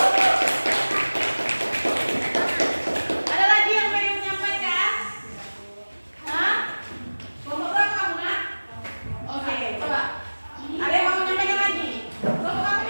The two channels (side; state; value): both; inverted; correlation -1.00